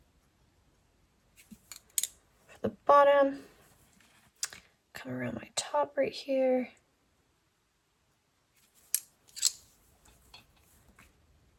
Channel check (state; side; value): identical; both; correlation 1.00